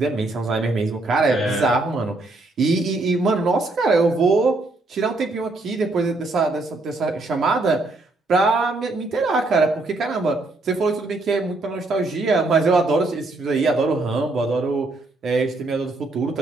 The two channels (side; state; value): left; quieter; 3.1 dB